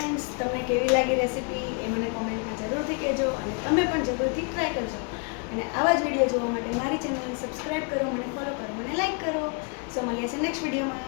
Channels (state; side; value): quieter; right; 36.2 dB